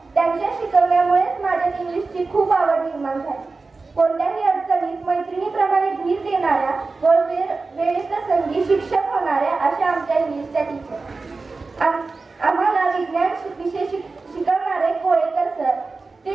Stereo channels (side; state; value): left; quieter; 3.9 dB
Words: त्यांच्या शिकवण्यामुळेच माझ्या इंग्लिशची खूप आवड निर्माण झाली. कोणत्याही अडचणीत मैत्रिणीप्रमाणे धीर देणाऱ्या व वेळप्रसंगी शिक्षक होणाऱ्या अशा आमच्या इंग्लिशच्या टीचर. आम्हाला विज्ञान विषय शिकवणारे कोळेकर सर, ते